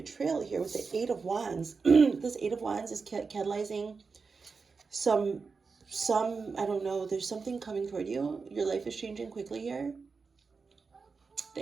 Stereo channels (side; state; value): left; quieter; 4.8 dB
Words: here with the 8 of Wands, this 8 of Wands is catalyzing some, I don't know, there's something coming toward you. Your life is changing quickly here.